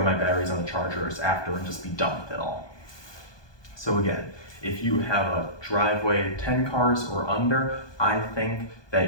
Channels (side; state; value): right; late; 1.2 ms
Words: my batteries on the chargers after, and just be done with it all. So again, if you have a driveway 10 cars or under, I think